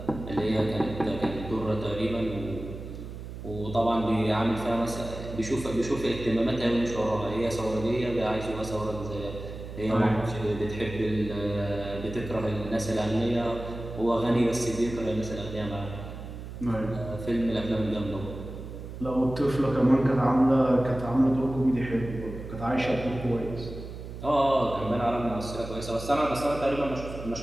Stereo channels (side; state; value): right; noise; hum, 10 dB below the sound